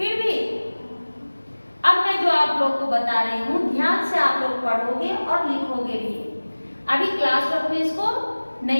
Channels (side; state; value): both; inverted; correlation -1.00